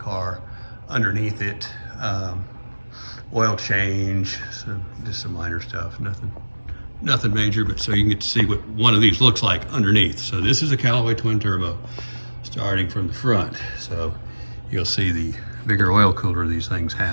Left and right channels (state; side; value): inverted; both; correlation -1.00